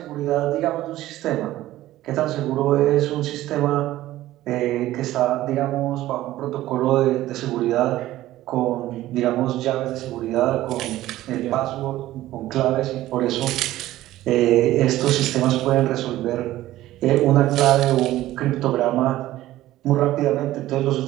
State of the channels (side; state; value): left; quieter; 15.2 dB